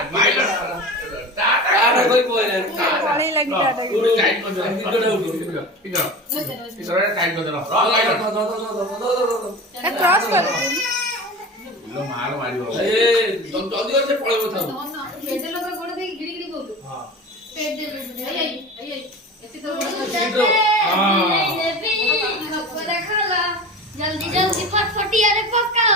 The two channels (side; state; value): both; normal; correlation 0.32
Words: পাইলট आरे कोई कोई नहीं पानी लगी टाटा के পুরো টাইট করে দাও इधर उठो इधर ইসরে টাইট করে দাও পাইলট क्रॉस कर লো মার মারিও ए जल्दी से पड़े बता पेटे लोग गोड़ दे गिड़ी गिड़ी बोल हां पेट दे आई ऐसे तो जल्दी जल्दी फटफटी अरे पक्का